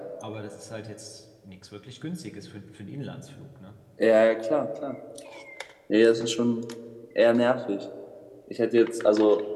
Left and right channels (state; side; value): identical; both; correlation 1.00